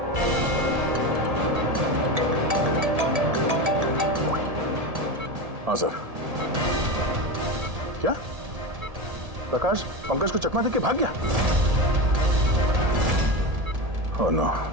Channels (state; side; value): late; left; 1.7 ms